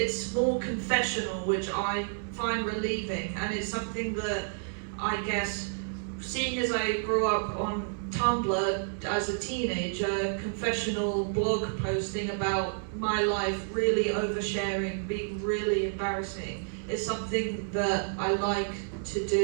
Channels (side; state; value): left; silent; 58 dB below the other